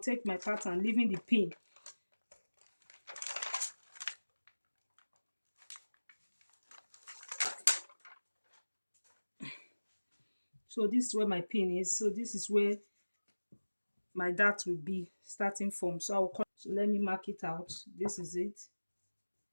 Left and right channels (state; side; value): inverted; both; correlation -1.00